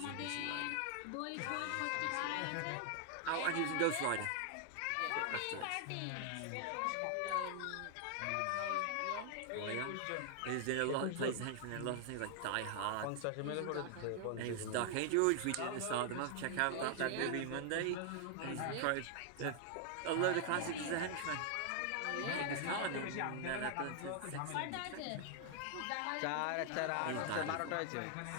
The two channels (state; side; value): different; both; correlation 0.00